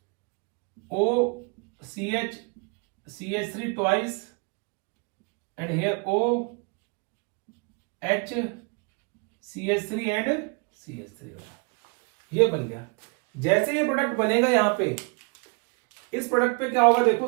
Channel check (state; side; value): quieter; left; 34.0 dB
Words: O CH CH3 twice and here O H CH3 and CH3, ये बन गया। जैसे ये प्रोडक्ट बनेगा यहां पे, इस प्रोडक्ट पे क्या होगा,